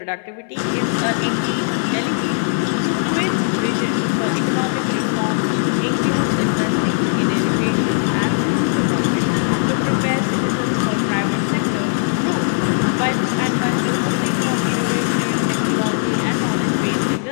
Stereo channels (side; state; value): right; silent; 60 dB below the other